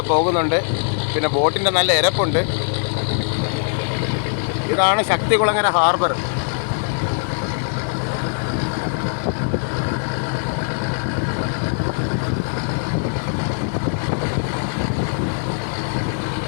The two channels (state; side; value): silent; right; digital silence